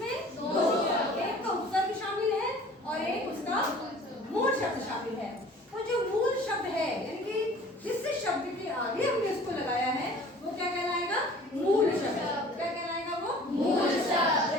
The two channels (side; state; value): both; normal; correlation 0.48